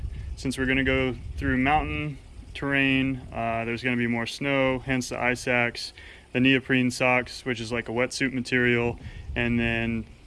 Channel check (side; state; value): both; identical; correlation 1.00